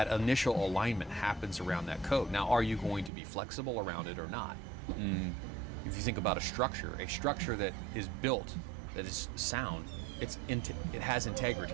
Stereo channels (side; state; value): left; drops out; at 3.1 s